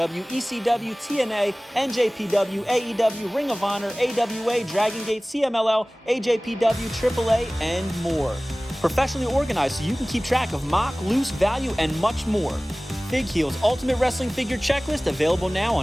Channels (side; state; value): both; normal; correlation 0.98